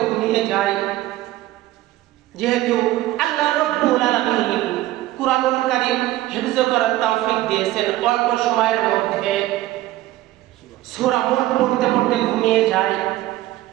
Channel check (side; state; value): left; quieter; 15.8 dB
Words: ঘুমিয়ে যাই। যেহেতু আল্লাহ রাব্বুল আলামিন কুরআনুল কারীম হিফজ করার তৌফিক দিয়েছেন, অল্প সময়ের মধ্যে সূরা মুলক পড়তে পড়তে ঘুমিয়ে যাই।